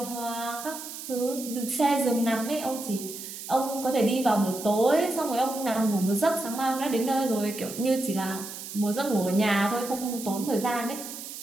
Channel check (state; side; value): noise; right; hiss, 10 dB below the sound